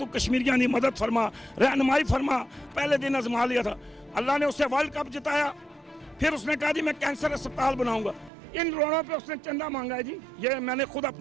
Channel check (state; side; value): drops out; left; at 8.3 s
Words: کشمیریاں دی مدد فرما رہنمائی فرما پہلے دن آزما لیا تھا اللہ نے اسے ورلڈ کپ جتایا پھر اس نے کہا جی میں کینسر اسپتال بناؤں گا ان روڑوں پہ اس نے چندہ مانگا ہے جی یہ میں نے خود